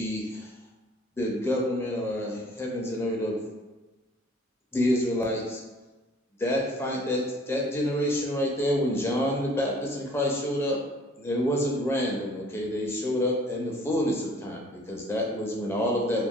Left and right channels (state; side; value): normal; both; correlation 0.54